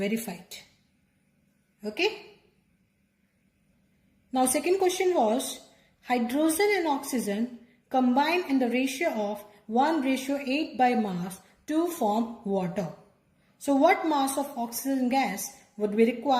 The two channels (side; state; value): both; identical; correlation 1.00